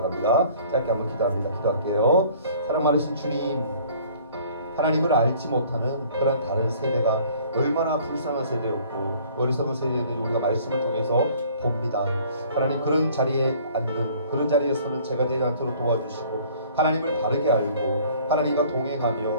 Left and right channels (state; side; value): inverted; both; correlation -0.54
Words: 짧게 한번 기도합니다. 기도할게요. 사랑 많으신 주님, 하나님을 알지 못하는 그런 다른 세대가 얼마나 불쌍한 세대였고 어리석은 세대였는지 우리가 말씀을 통해서 봅니다. 하나님 그런 자리에 앉는 그런 자리에 서는 제가 되지 않도록 도와주시고 하나님을 바르게 알고 하나님과